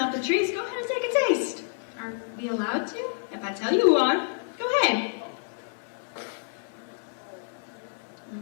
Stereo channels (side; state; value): right; silent; 59 dB below the other